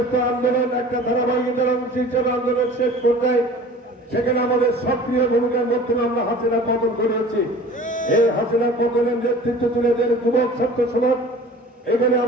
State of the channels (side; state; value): both; normal; correlation 0.44